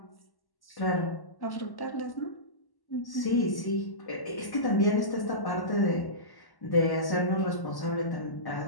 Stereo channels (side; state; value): right; late; 1.1 ms